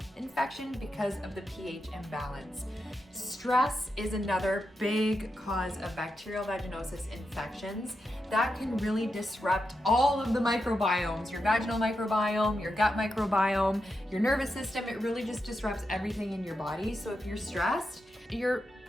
infection because of the pH imbalance. Stress is another big cause of bacterial vaginosis infections. That can really disrupt all of the microbiomes, your vaginal microbiome, your gut microbiome, your nervous system. It really just disrupts everything in your body. So if you're stressed, you're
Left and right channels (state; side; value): normal; both; correlation 0.87